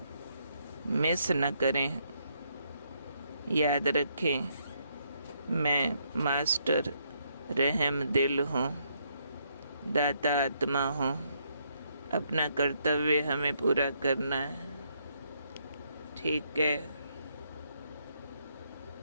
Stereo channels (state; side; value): inverted; both; correlation -0.74